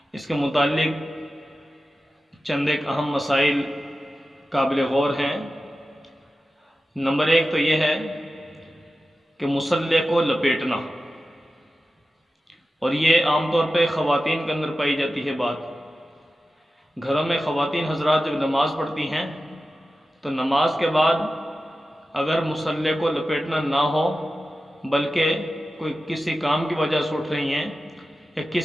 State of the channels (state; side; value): normal; both; correlation 0.93